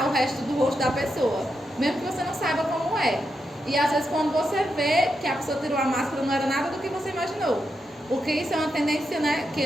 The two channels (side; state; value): both; normal; correlation 0.85